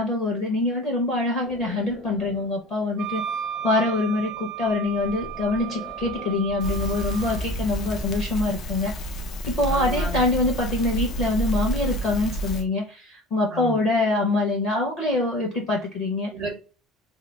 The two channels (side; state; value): both; normal; correlation 0.38